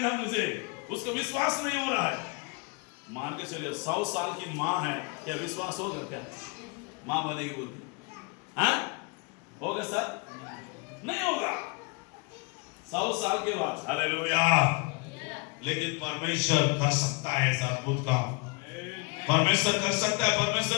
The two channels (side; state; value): right; quieter; 31.5 dB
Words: मुझे। उसका विश्वास नहीं हो रहा है। मान के चलिए 100 साल की मां है, क्या विश्वास होगा? क्या मां बनेगी बोलती? हाँ होगा सर? नहीं होगा 100 साल के बाद। हालेलुया। लेकिन परमेश्वर कर सकता है ऐसा अद्भुत काम। परमेश्वर कर सकता है,